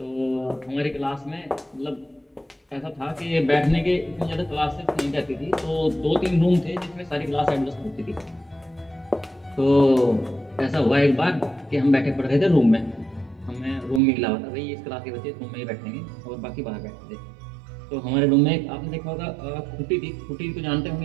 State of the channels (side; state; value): left; drops out; at 14.0 s